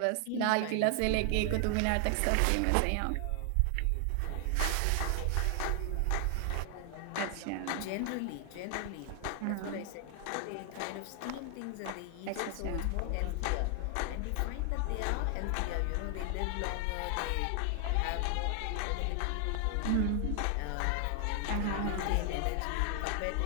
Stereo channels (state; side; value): different; both; correlation 0.00